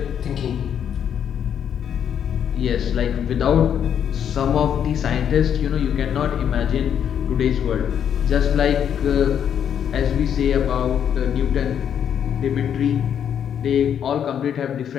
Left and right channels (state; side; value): quieter; right; 8.8 dB